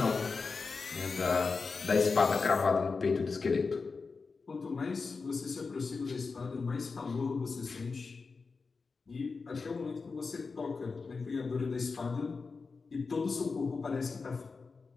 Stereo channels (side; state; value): right; quieter; 4.5 dB